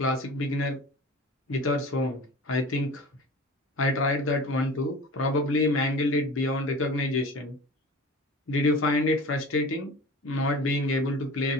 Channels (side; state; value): both; normal; correlation 0.38